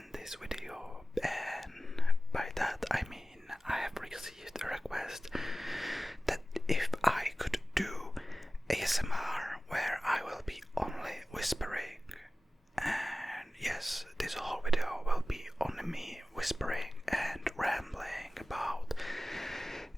this video, and by that I mean I have received a request that if I could do ASMR where I will be only whispering, and yes, this whole video will be only me whispering and rambling about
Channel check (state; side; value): normal; both; correlation 0.96